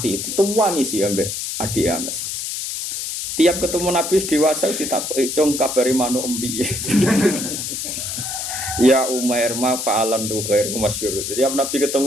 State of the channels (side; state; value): left; noise; hiss, 4 dB below the sound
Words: dituwangi sih ambek adik Anas. Tiap ketemu Nabi dewasa ditakoki, "Cung kabari manuk empiye?" Ya Umar ma fa'alan nuher masyhur. Tiap Nabi